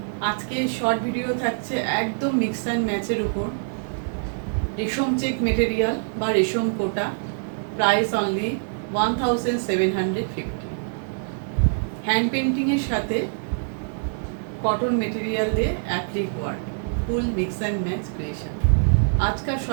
আজকে শর্ট ভিডিও থাকছে একদম মিক্স অ্যান্ড ম্যাচের উপর। রেশম চেক মেটেরিয়াল বা রেশম কোটা, প্রাইস অনলি 1750। হ্যান্ড পেন্টিংয়ের সাথে কটন মেটেরিয়াল দিয়ে applique work, full mix and match creation. आज का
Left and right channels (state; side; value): silent; left; digital silence